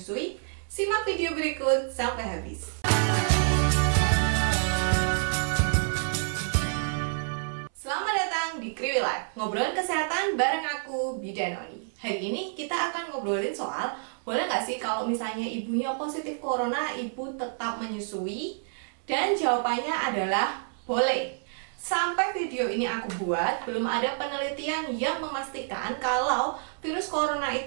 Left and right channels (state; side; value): silent; left; 59 dB below the other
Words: Simak video berikut sampai habis. Selamat datang di Kriwi Life, ngobrolin kesehatan bareng aku, Bidan Oni. Hari ini kita akan ngobrolin soal, boleh nggak sih kalau misalnya ibunya positif corona, ibu tetap menyusui? Dan jawabannya adalah boleh. Sampai video ini aku buat, belum ada penelitian yang memastikan kalau virus corona